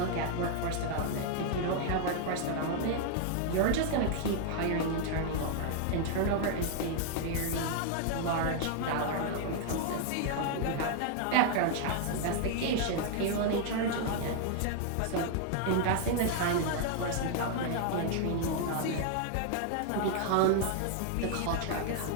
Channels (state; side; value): different; both; correlation 0.00